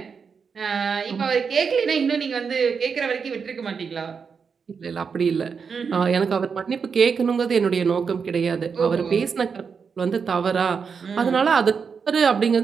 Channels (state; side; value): quieter; left; 5.9 dB